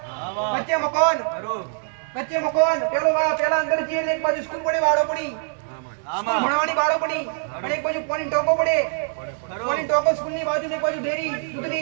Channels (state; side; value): silent; left; 63 dB below the other